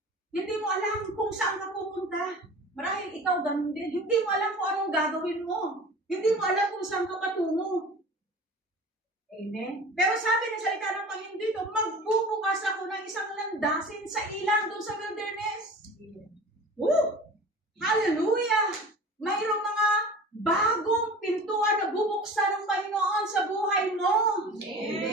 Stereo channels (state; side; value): normal; both; correlation 0.39